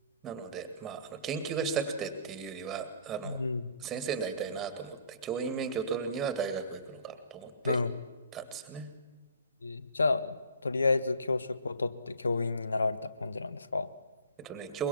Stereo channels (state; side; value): inverted; both; correlation -0.51